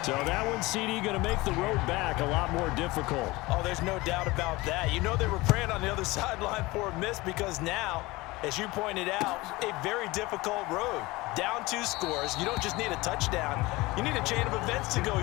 So that one, CD, going to make the road back a lot more difficult. Oh, there's no doubt about that. You know they were praying on the other sideline for a miss because now, as you pointed out, a very difficult road. Down 2 scores. You don't just need a touchdown. You need a chain of events to go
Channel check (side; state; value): right; quieter; 21.4 dB